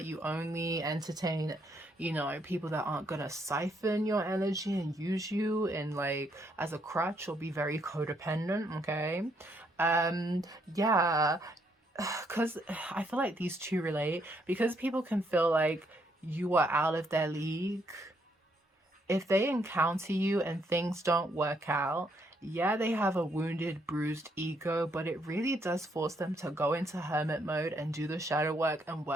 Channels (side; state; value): both; normal; correlation 0.73